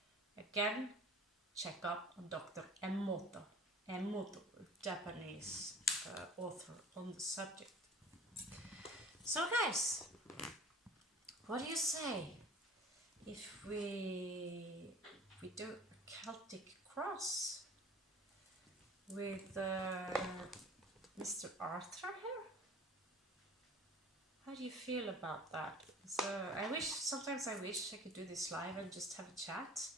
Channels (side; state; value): both; normal; correlation 0.45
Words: Again, check up on Dr. Emoto, a Japanese author on the subject. So guys, what do you say if we do a Celtic cross with Mr. Arthur here? How do you feel about that? So sometimes I wish I could do this live and just have a chat.